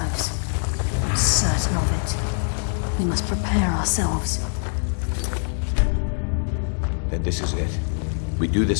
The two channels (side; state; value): right; silent; 56 dB below the other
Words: I'm certain of it. We must prepare ourselves. Then this is it. We do